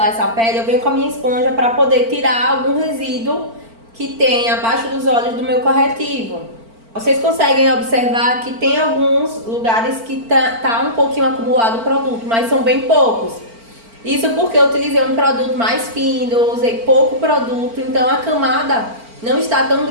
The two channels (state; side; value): late; left; 4.4 ms